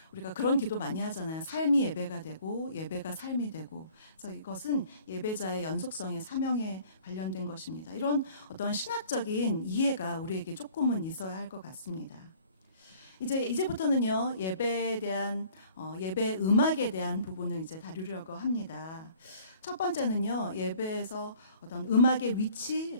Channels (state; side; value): inverted; both; correlation -0.53